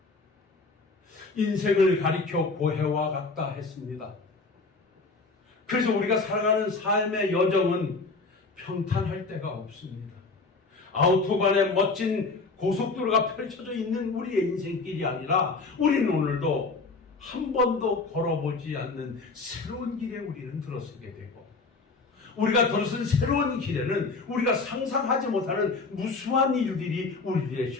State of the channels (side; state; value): right; quieter; 3.9 dB